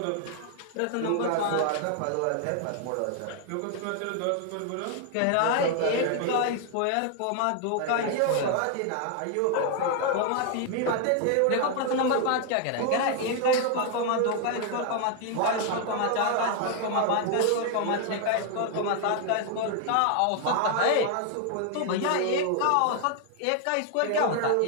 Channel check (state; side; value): different; both; correlation 0.00